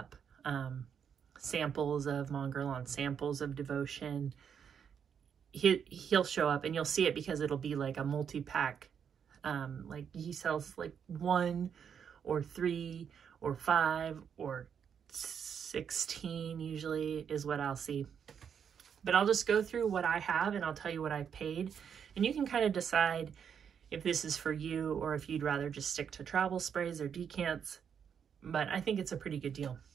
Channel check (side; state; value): left; quieter; 7.6 dB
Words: Samples of Mon Guerlain, samples of Devotion. He'll show up and you'll see it because it'll be like a multi-pack. Like he sells like 1 or 3 or 5 or 16 usually is what I'll see. But I'll just go through what I have and I'll tell you what I've paid. And you can kind of decide if this is for you or if you'd rather just stick to travel sprays or decants. But I think it's a pretty good deal.